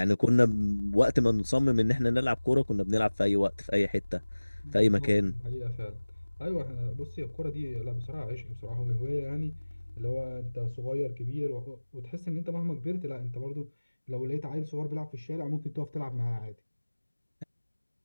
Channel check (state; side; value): inverted; both; correlation -1.00